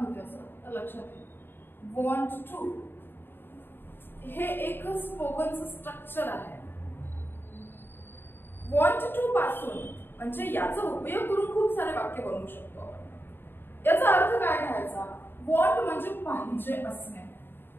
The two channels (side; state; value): right; late; 0.10 ms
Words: असं तर लक्षात येईल। want to हे एक स्पोकनचं स्ट्रक्चर आहे। want to पासून म्हणजे याचा उपयोग करून खूप सारे वाक्य बनवू शकतो आपण। याचा अर्थ काय घ्यायचा? want म्हणजे पाहिजे असणे।